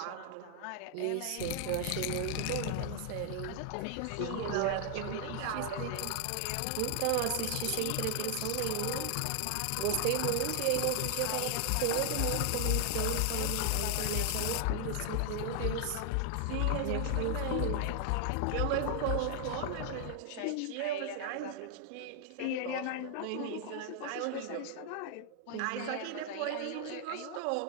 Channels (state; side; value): different; both; correlation 0.00